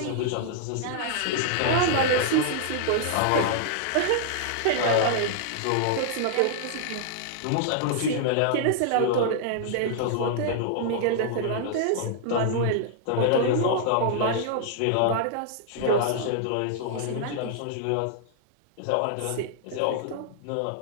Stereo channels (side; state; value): both; different; correlation -0.01